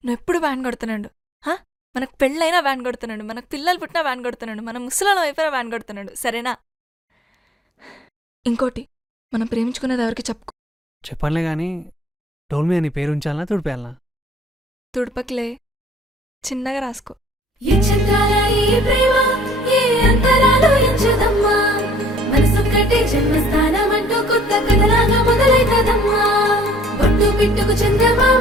నువ్వెప్పుడు వ్యాన్ కొడుతున్నాడు. మనకు పెళ్ళైనా వ్యాన్ కొడుతున్నాడు, మనకు పిల్లలు పుట్టినా వ్యాన్ కొడుతున్నాడు, మన ముసలాళ్ళం అయిపోయినా వ్యాన్ కొడుతున్నాడు. సరేనా? ఇంకోటి, మనం ప్రేమించుకునేది ఎవరికి చెప్పుకో. చెప్పనులే కానీ డోల్ మీద నీ పేరు ఉంచాలనా తుడిపేయాలనా? తుడపకిలే, చిన్నగా రాసుకో. పిట్టుకు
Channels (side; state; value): both; normal; correlation 0.58